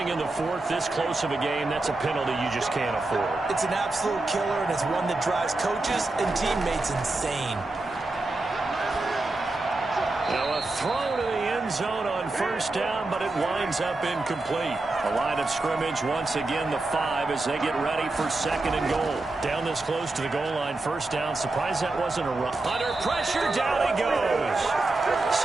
in the 4th, this close of a game, that's a penalty you just can't afford. It's an absolute killer, and it's one that drives coaches and teammates insane. Now a throw to the end zone on first down, but it winds up incomplete. The line of scrimmage once again the 5 as they get ready for 2nd and goal. Down this close to the goal line, first down. Surprised that wasn't a run. Under pressure, down he goes.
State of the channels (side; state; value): left; quieter; 3.1 dB